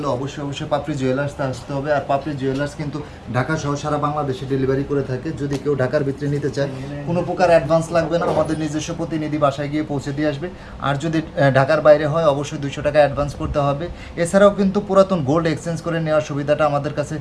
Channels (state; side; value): identical; both; correlation 1.00